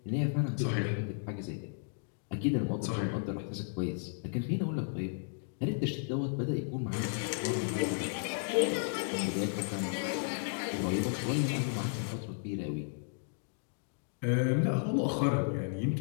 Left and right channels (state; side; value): silent; right; digital silence